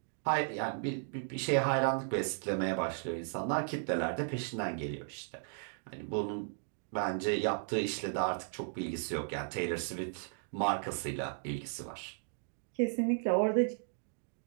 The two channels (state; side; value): silent; left; digital silence